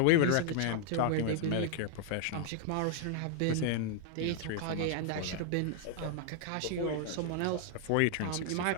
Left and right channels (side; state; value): both; different; correlation -0.01